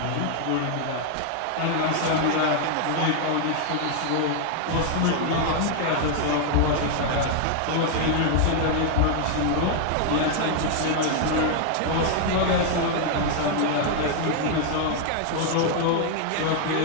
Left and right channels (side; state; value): both; different; correlation 0.00